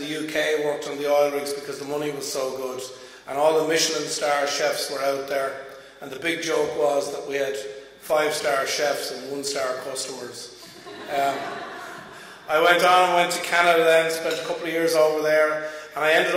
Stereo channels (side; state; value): both; identical; correlation 1.00